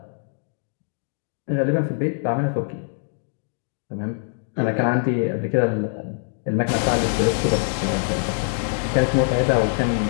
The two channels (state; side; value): silent; right; digital silence